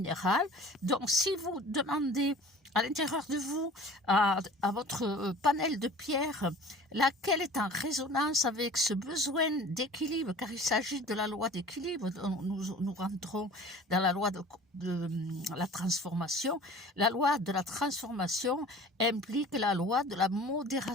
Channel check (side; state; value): both; normal; correlation 0.44